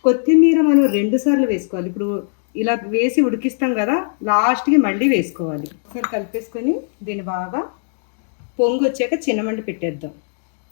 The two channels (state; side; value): silent; right; digital silence